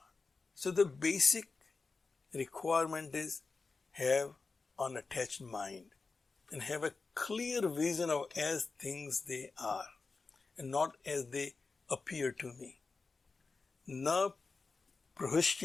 So the basic requirement is have unattached mind and have a clear vision of as things they are and not as they appear to me. Na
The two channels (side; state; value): right; quieter; 4.2 dB